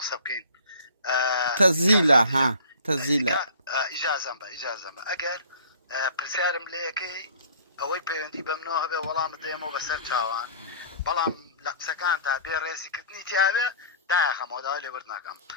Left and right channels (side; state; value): both; inverted; correlation -0.46